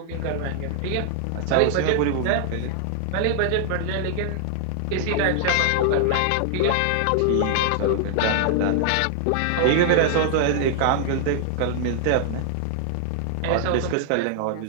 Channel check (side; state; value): both; different; correlation 0.00